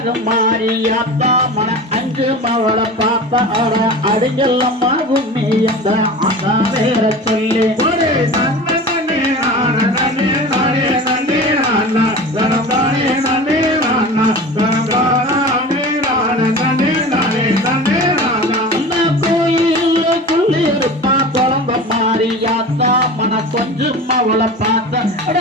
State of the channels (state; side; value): normal; both; correlation 0.34